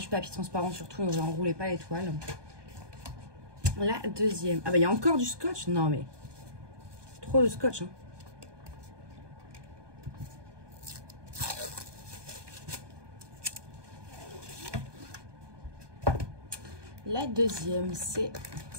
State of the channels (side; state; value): left; late; 1.2 ms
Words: papier transparent surtout. Donc, j'enroulais pas les toiles. La deuxième. Ah bah, il y a encore du scotch. Non, mais trop de scotch, hein. La deuxième, c'est